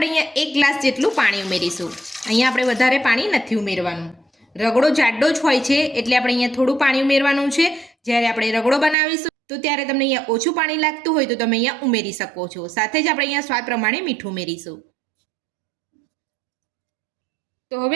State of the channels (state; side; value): drops out; left; at 9.0 s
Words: અહીંયા 1 ગ્લાસ જેટલું પાણી ઉમેરીશું। અહીંયા આપણે વધારે પાણી નથી ઉમેરવાનું। રગડો જાડો જ હોય છે એટલે આપણે અહીંયા થોડું પાણી ઉમેરવાનું છે। જ્યારે આપણે રગડો બનાવીશું તો ત્યારે તમને અહીંયા ઓછું પાણી લાગતું હોય તો તમે અહીંયા ઉમેરી શકો છો। સાથે જ આપણે અહીંયા સ્વાદ પ્રમાણે મીઠું ઉમેરીશું। તો